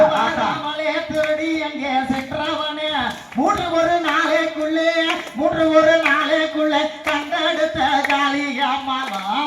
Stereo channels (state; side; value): identical; both; correlation 1.00